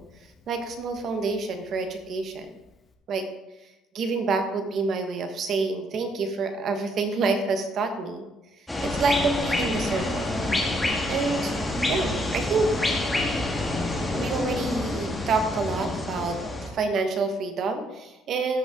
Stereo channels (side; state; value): both; normal; correlation 0.71